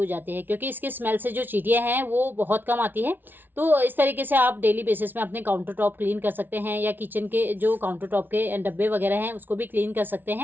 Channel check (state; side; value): late; left; 0.093 ms